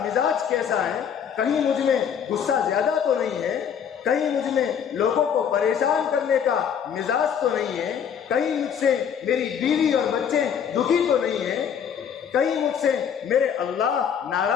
مزاج کیسا ہے، کہیں مجھ میں غصہ زیادہ تو نہیں ہے، کہیں مجھ میں لوگوں کو پریشان کرنے کا مزاج تو نہیں ہے، کہیں مجھ سے میری بیوی اور بچے دکھی تو نہیں ہیں، کہیں مجھ سے میرے اللہ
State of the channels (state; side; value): quieter; right; 7.9 dB